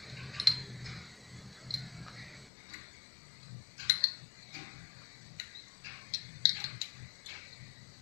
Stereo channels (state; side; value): drops out; right; at 2.5 s